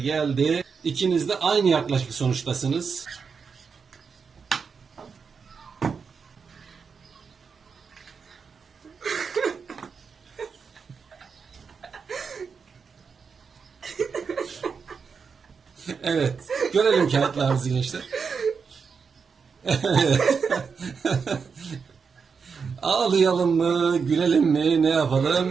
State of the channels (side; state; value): left; quieter; 5.7 dB